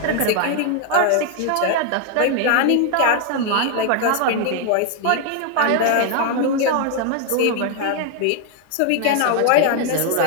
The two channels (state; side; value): different; both; correlation 0.00